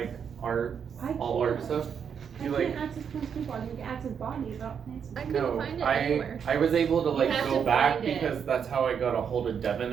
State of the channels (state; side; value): quieter; left; 7.3 dB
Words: art, all art stuff. I You can't like access plants people, I can access bodies, not plants. I couldn't no, find it anywhere. I was able to like have go to back find it. because that's how I got a hold of Devin